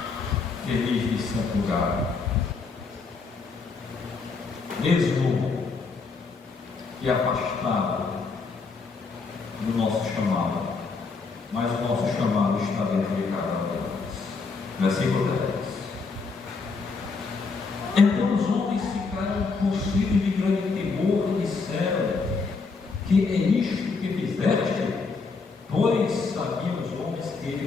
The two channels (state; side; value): quieter; right; 4.5 dB